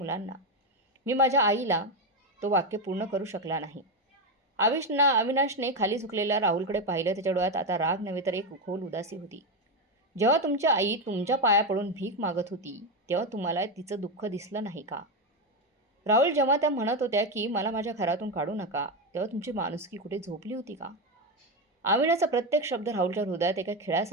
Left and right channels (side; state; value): both; normal; correlation 0.10